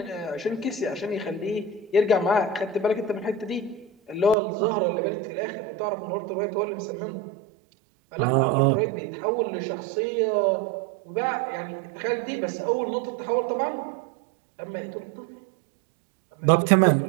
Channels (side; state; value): left; drops out; at 4.4 s